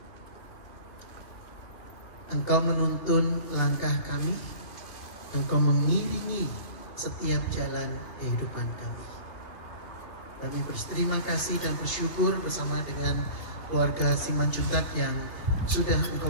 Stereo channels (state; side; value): late; right; 2.8 ms